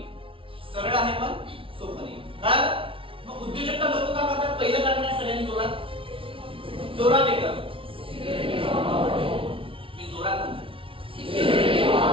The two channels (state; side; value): late; left; 0.26 ms